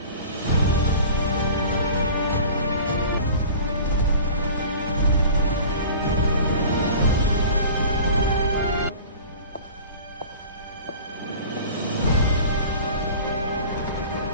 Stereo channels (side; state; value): both; inverted; correlation -0.41